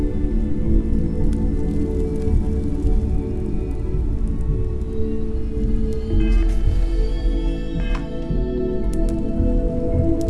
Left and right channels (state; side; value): identical; both; correlation 1.00